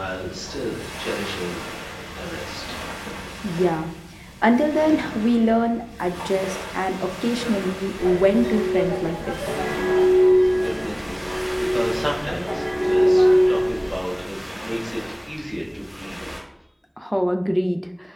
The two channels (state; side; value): identical; both; correlation 1.00